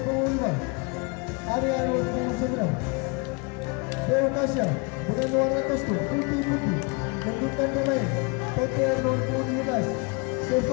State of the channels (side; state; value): right; quieter; 31.1 dB